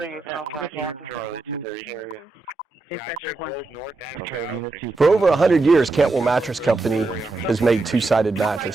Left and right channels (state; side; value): quieter; left; 3.5 dB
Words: youth and 412 area. For over 100 years, Cantwell Mattress Company has made two-sided